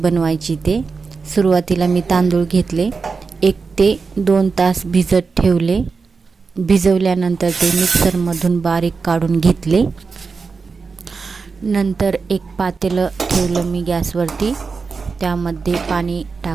ते। सुरुवातीला मी तांदूळ घेतले, 1 ते 2 तास भिजत ठेवले। भिजवल्यानंतर ते मिक्सरमधून बारीक काढून घेतले। नंतर एक पातेलं ठेवलं मी गॅसवरती, त्यामध्ये पाणी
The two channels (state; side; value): quieter; left; 4.8 dB